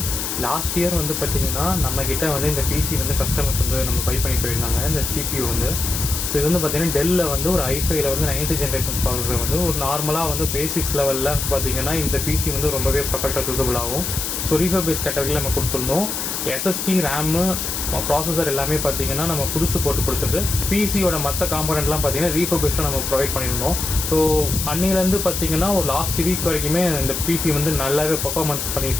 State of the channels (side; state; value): left; noise; hiss, 3 dB below the sound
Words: லாஸ்ட் இயர் வந்து பார்த்திங்கன்னா நம்மக்கிட்ட வந்து இந்த பிசி வந்து கஸ்டமர்ஸ் வந்து நம்ம பை பண்ணி போயிருந்தாங்க. இந்த CPU வந்து ஸோ இது வந்து பார்த்திங்கன்னா டெல்லில் வந்து ஒரு i5ல வந்து 9th ஜென்ரேஷன் ப்ராசஸர் வந்து ஒரு நார்மலாக வந்து பேசிக்ஸ் லெவலில் பார்த்திங்கன்னா இந்த பிசி வந்து ரொம்பவே பர்ஃபெக்டாக சூஸபிள் ஆகும். ஸோ ரீஃபர்பிஷ் கேட்டகரியில் நம்ம கொடுத்துருந்தோம். SSD ரேமு ப்ராசஸர் எல்லாமே பார்த்திங்கன்னா நம்ம புதுசு போட்டு கொடுத்துட்டு பிசியோட மற்ற காம்பனண்ட்லாம் பார்த்திங்கன்னா ரீஃபர்பிஷாக நம்ம ப்ரொவைட் பண்ணியிருந்தோம். ஸோ அன்னிலேருந்து பார்த்திங்கன்னா ஒரு லாஸ்ட் வீக் வரைக்குமே இந்த பிசி வந்து நல்லாவே பர்ஃபார்மன்ஸ் பண்ணிட்டு